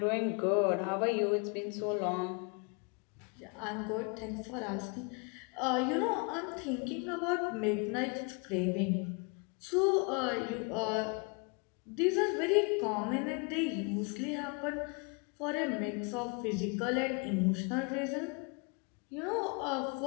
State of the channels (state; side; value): quieter; right; 34.3 dB